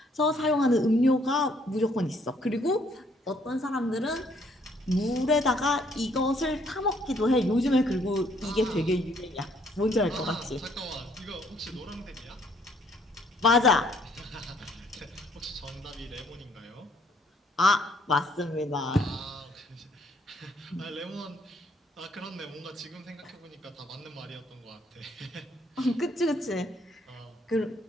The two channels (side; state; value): both; normal; correlation 0.65